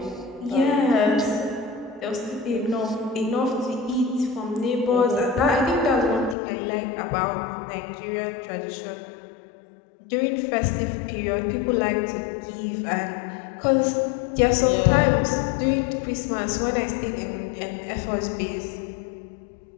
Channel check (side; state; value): right; drops out; at 6.4 s